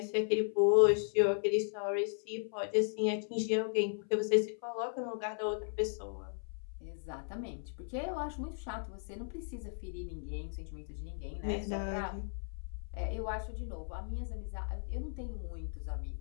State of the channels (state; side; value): silent; right; 54 dB below the other